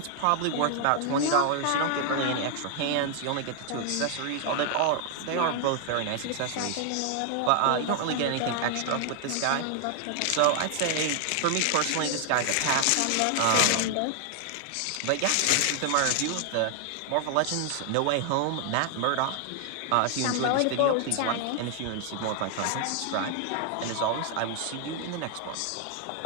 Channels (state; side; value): different; both; correlation 0.00